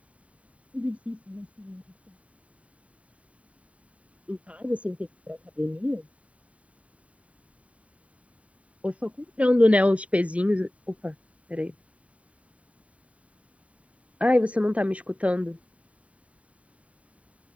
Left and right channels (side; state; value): left; late; 0.066 ms